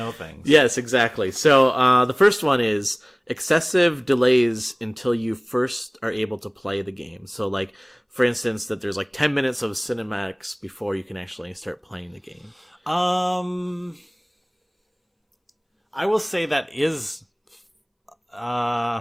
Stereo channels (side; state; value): both; identical; correlation 1.00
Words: things. Yes, exactly. So the first one is excessive delays until you first are able to play the game. So, like, for instance, that there's like 10 minutes of cinematics before you can actually start playing the game. I will say that is...